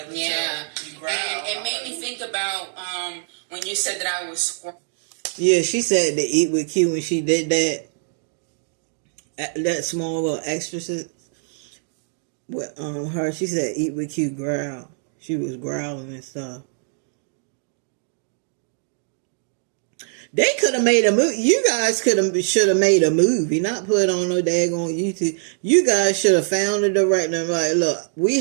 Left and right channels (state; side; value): silent; left; digital silence